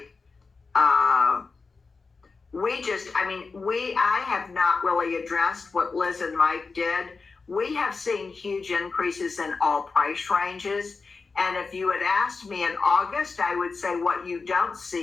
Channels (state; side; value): quieter; right; 4.4 dB